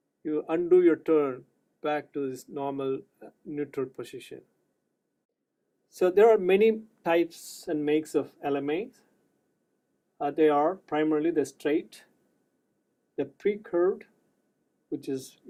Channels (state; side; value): identical; both; correlation 1.00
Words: you undo your turn back to this normal neutral position. So there are many types and makes of LMAs. They are primarily the straight, the pre-curved, which is